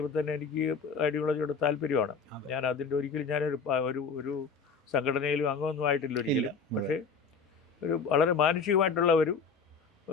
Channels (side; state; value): right; quieter; 5.2 dB